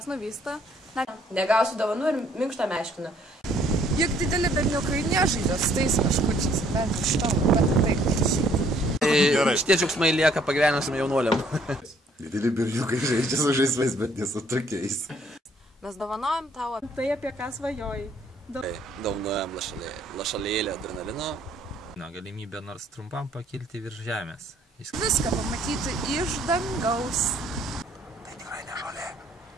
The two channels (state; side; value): normal; both; correlation 0.63